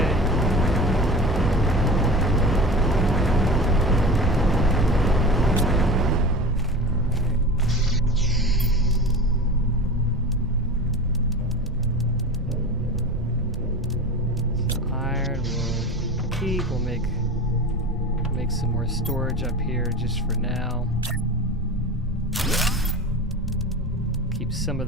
We'll make some more storage up here just for now. Keep some of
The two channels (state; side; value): normal; both; correlation 0.32